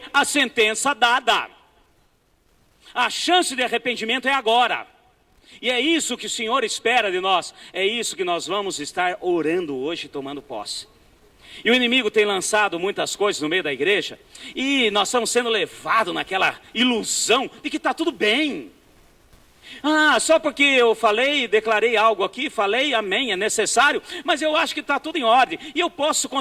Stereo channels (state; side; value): identical; both; correlation 1.00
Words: a sentença dada. A chance de arrependimento é agora. E é isso que o Senhor espera de nós. É isso que nós vamos estar orando hoje, tomando posse. E o inimigo tem lançado muitas coisas no meio da igreja, e nós estamos sendo levados naquela ilusão de que está tudo bem. Só porque eu falei, declarei algo aqui, falei, amém, é necessário, mas eu acho que está tudo em ordem, e eu posso